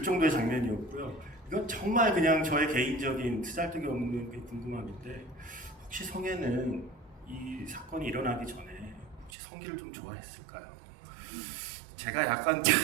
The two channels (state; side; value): drops out; left; at 9.3 s